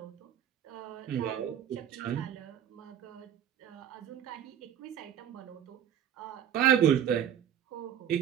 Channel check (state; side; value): quieter; left; 9.8 dB